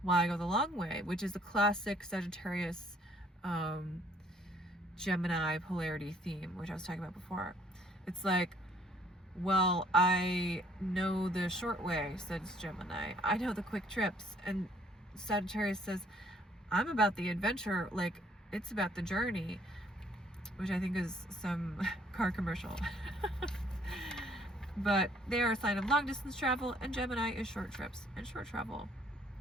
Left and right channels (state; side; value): normal; both; correlation 0.63